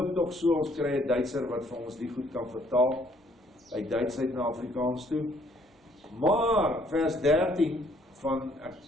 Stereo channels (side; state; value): both; normal; correlation 0.64